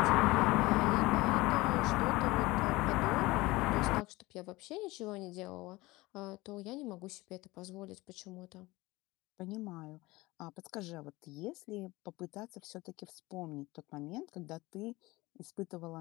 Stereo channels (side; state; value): right; quieter; 20.7 dB